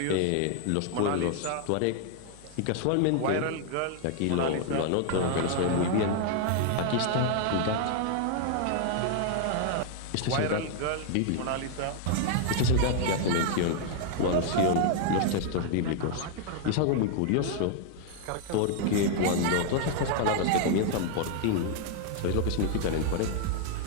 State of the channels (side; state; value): both; different; correlation 0.00